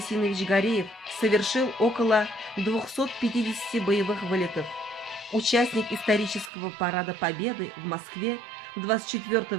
Гареев совершил около 250 боевых вылетов. Участник исторического парада Победы в Москве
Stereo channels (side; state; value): left; drops out; at 6.5 s